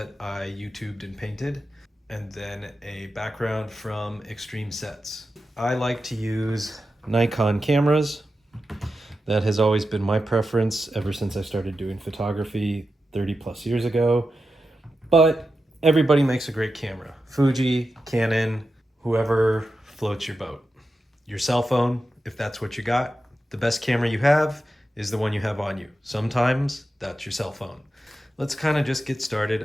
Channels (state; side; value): normal; both; correlation 0.90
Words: I YouTubed and painted, and then a background from Extreme Sets. I like to use Nikon cameras. That has always been my preference ever since I started doing photography 30 plus years ago. But everybody makes a great camera. Fuji, Canon, whoever floats your boat. Your cell phone, if that's what you got, the best camera you have is the one you have on you. Sometimes that's your cell phone. Let's kind of just get